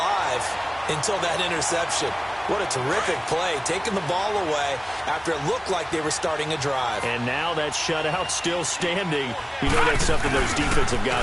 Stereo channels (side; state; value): both; identical; correlation 1.00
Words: until that interception. What a terrific play, taking the ball away after it looked like they were starting a drive. And now that shutout still standing. You know that's something those defensive